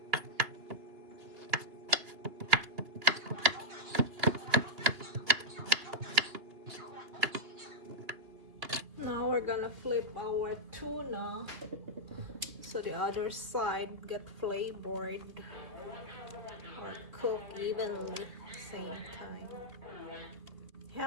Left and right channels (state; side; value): late; left; 2.8 ms